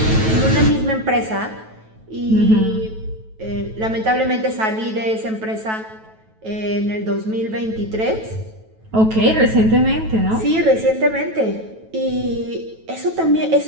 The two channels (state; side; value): late; left; 9.2 ms